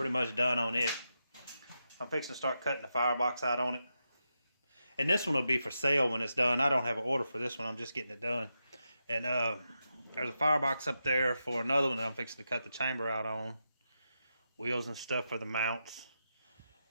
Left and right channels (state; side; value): inverted; both; correlation -0.87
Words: much done on it. I'm fixing to start cutting the firebox out on it. And this one will be for sale when it's done. I don't have an order for this one. I'm just getting it done. And there's a firebox up there for another one that I'm fixing to cut the chamber out on. Wheels and stuff for the mounts.